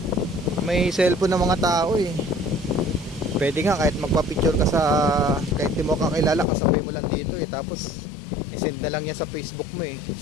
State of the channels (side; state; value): right; drops out; at 6.5 s